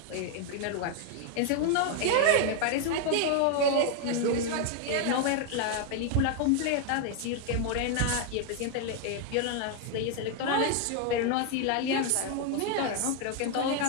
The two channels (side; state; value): both; different; correlation 0.01